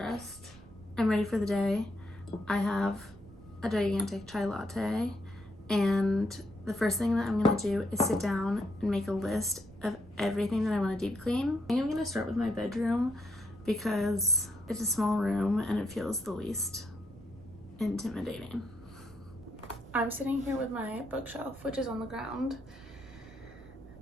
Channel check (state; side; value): noise; right; rumble, 20 dB below the sound